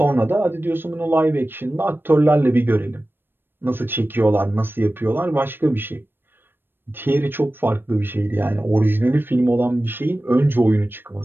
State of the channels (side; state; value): left; late; 0.097 ms